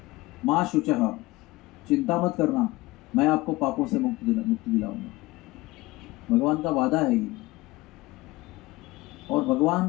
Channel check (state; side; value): quieter; right; 20.5 dB